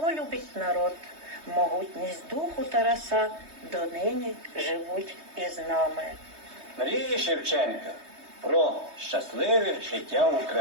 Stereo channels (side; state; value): left; late; 3.2 ms